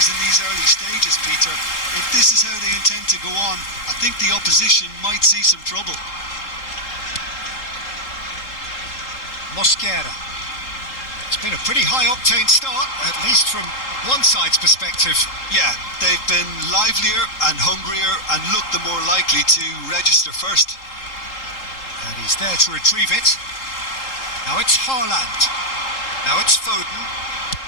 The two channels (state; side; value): late; right; 3.8 ms